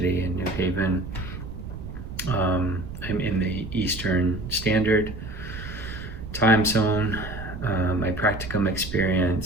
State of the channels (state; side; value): noise; right; rumble, 10 dB below the sound